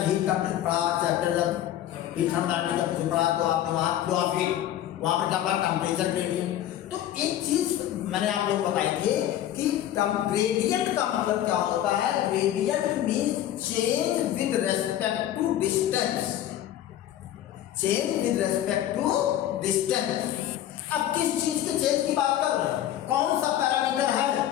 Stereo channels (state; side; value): quieter; right; 12.1 dB